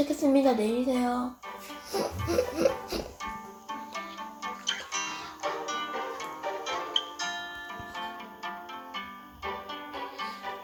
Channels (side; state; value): both; identical; correlation 1.00